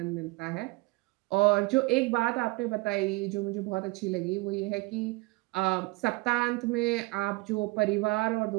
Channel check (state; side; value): quieter; left; 23.2 dB